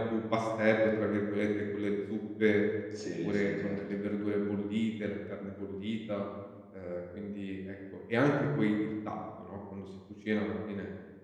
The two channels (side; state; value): both; identical; correlation 1.00